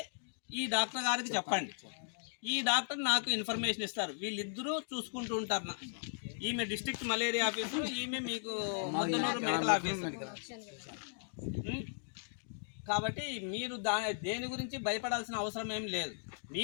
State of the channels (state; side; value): silent; right; digital silence